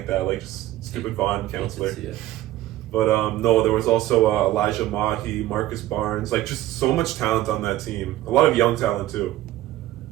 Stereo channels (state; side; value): quieter; left; 14.8 dB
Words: that, like just stupid Vaughn counselor. Hate to see it. But no, there was also Elijah Mahi, Marcus Barnes, like just so much talent on that team. A lot of young talent too.